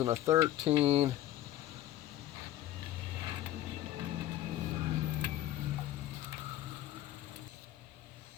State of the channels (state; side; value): quieter; right; 13.6 dB